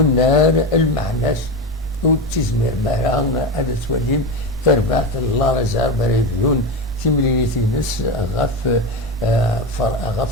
المعناس وتزمير مهران هذا توليم تربعت الله رزار بريفيون تملينيتي نس غاف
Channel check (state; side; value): normal; both; correlation 0.18